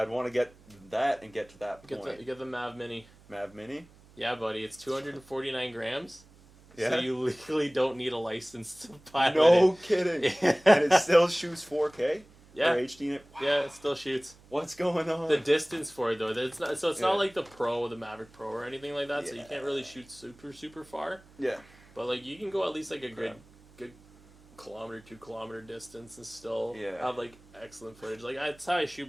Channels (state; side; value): noise; right; hum, 25 dB below the sound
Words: want to get that and get to that point. You get the Mav Mini. Mav Mini? Yeah, buddy. It's 249 grams. Yeah. So you legally don't need a license to pilot it. No kidding. And it still shoots 4K? Yeah. Or HD? Yeah, it still shoots. What's going on? The distance for it, though. It's not like the Maverick Pro or anything like that, so you can't really shoot super far. Yeah. But, like, you can go at least, like, a good kilometer, 2 kilometer distance and still have, like, excellent footage. Like, that's how I shoot